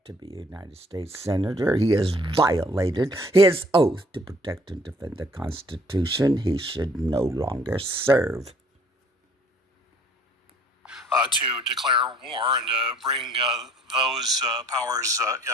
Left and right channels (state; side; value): normal; both; correlation 0.57